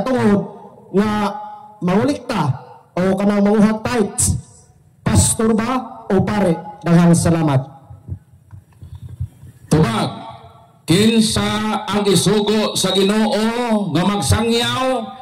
nga mangulikta o kanang manguhat tithes, pastor ba o pare? Daghang salamat. Tubag, kinsa ang isugo sa Ginoo nga magsangyaw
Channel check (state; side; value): identical; both; correlation 1.00